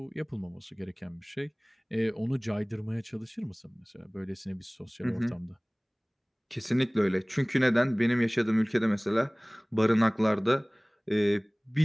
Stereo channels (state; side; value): identical; both; correlation 1.00